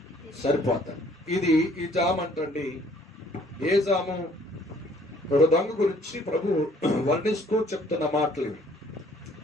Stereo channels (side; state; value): both; normal; correlation 0.60